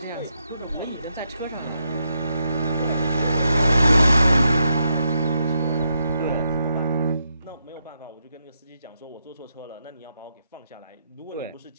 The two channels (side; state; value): both; inverted; correlation -0.81